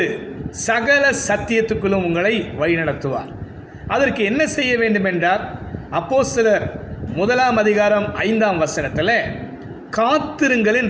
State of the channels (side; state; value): both; identical; correlation 1.00